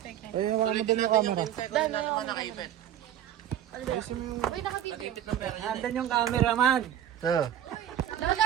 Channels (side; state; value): left; quieter; 10.9 dB